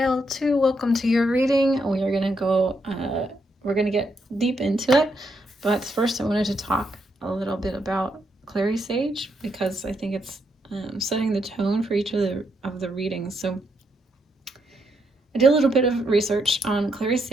2. Welcome to your reading. We are going to go, we're going to get deep into it. But first, I wanted to talk a little bit about Clary Sage, because I think it's setting the tone for each of the readings. So I did a little bit of research on Clary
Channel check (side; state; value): both; normal; correlation 0.78